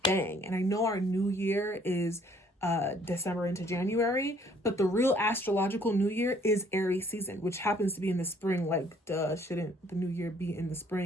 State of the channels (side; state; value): both; normal; correlation 0.61